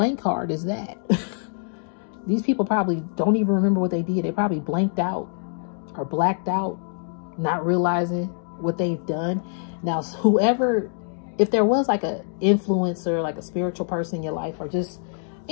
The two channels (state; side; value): silent; right; digital silence